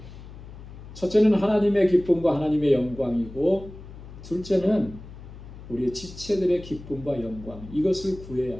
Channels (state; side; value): noise; left; hum, 15 dB below the sound